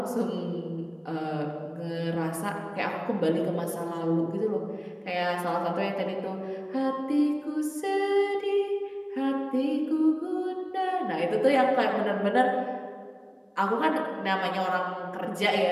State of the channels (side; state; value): both; identical; correlation 1.00